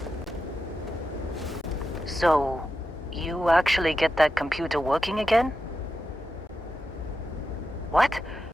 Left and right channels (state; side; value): normal; both; correlation 0.89